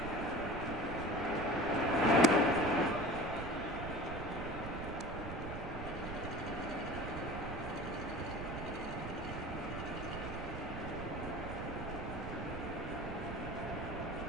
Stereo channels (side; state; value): right; noise; rumble, 7 dB below the sound